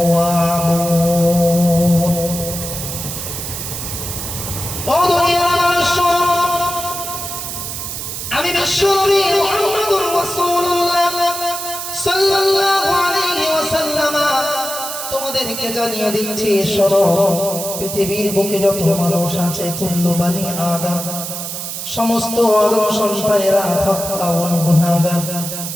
ও দুনিয়ার মানুষ, আমি বিশ্বনবী মুহাম্মদুর রাসূলুল্লাহ সাল্লাল্লাহু আলাইহি ওয়াসাল্লাম তোমাদেরকে জানিয়ে দিচ্ছি, শোনো, পৃথিবীর বুকে যত মানুষ আছে, কুল্লু বানি আদম, সমস্ত আদম সন্তানেরা খাতাউন, গুনাহগার।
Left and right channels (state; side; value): noise; right; hiss, 6 dB below the sound